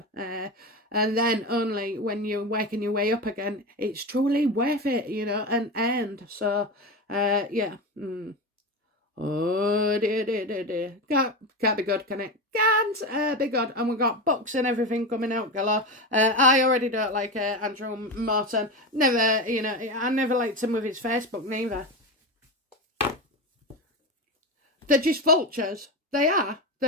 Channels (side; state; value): both; normal; correlation 0.20